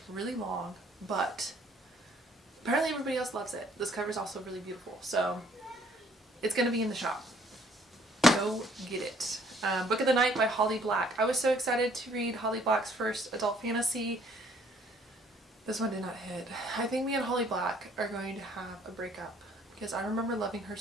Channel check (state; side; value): normal; both; correlation 0.62